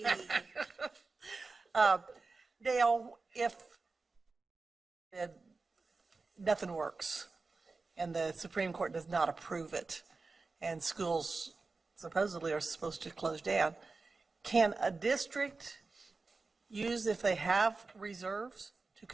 Dale, if nothing works and the Supreme Court does not approve it and schools supposedly are supposed to close down, can a district use, if they have reserves, to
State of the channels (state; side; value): quieter; left; 3.9 dB